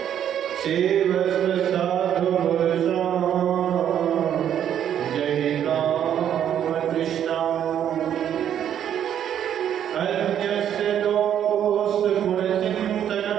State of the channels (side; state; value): left; quieter; 9.8 dB